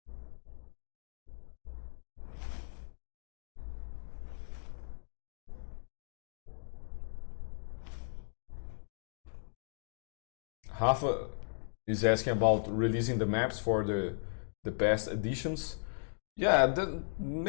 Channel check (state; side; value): silent; right; digital silence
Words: Rafa is asking about releasing the maps for the past editions. Yeah,